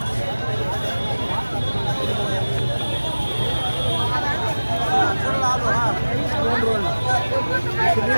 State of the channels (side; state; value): both; inverted; correlation -1.00